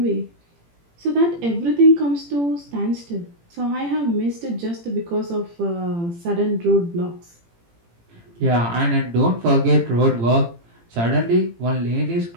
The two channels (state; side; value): late; left; 18 ms